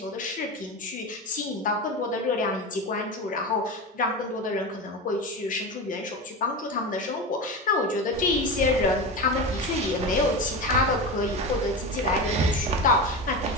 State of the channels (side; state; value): both; normal; correlation 0.23